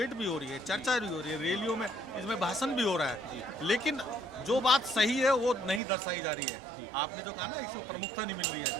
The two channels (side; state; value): left; drops out; at 5.8 s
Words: भी हो रही है, चर्चा भी हो रही है, रैलियों में इसमें भाषण भी हो रहा है, लेकिन जो बात सही है वो नहीं दर्शाई जा रही है। आपने जो कहा ना इसको प्रमुखता नहीं मिल रही है,